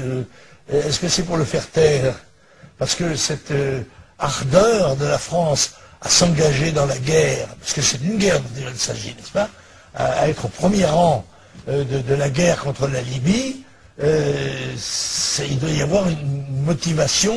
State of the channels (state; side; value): identical; both; correlation 1.00